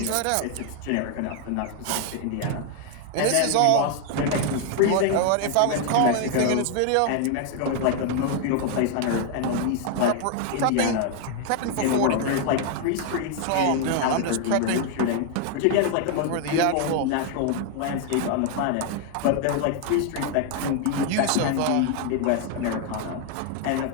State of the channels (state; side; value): different; both; correlation 0.00